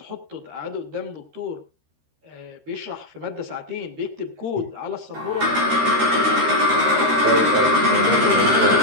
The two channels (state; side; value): late; left; 13 ms